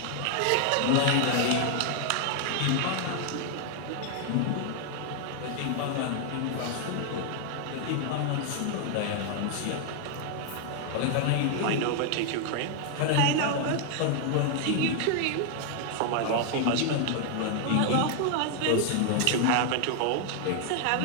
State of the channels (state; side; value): different; both; correlation 0.00